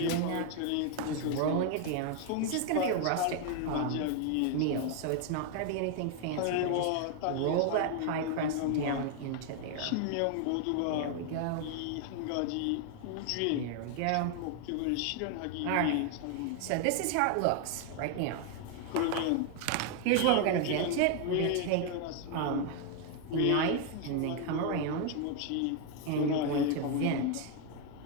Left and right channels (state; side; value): different; both; correlation 0.01